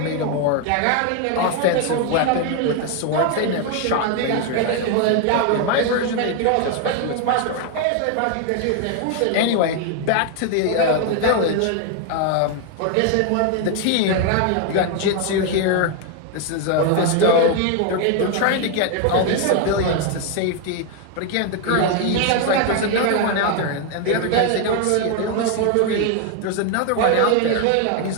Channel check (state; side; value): different; both; correlation 0.01